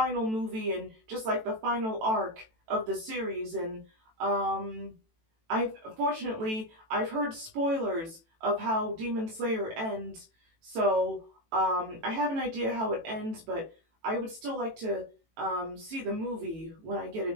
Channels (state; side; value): late; left; 18 ms